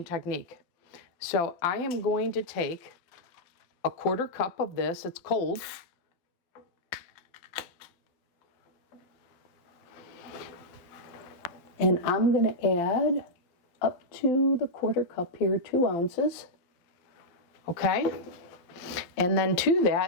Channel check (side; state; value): right; late; 12 ms